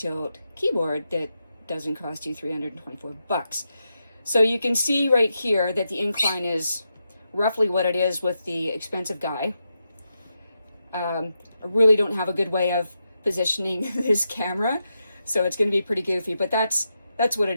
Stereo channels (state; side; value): inverted; both; correlation -0.86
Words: keyboard that doesn't cost you $324. So you can see right here that the incline is roughly what it is with the expensive guy. I really don't have a good way of positioning this camera, so it's going to be pretty goofy, but that's what it